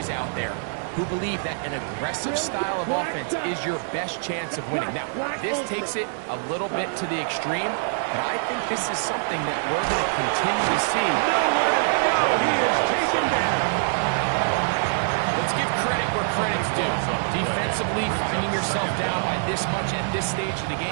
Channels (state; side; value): silent; left; digital silence